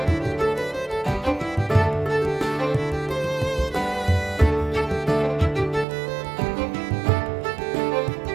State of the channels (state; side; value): drops out; left; at 5.9 s